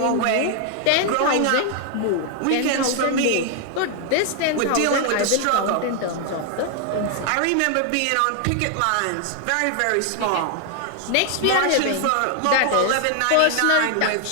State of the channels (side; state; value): both; different; correlation 0.00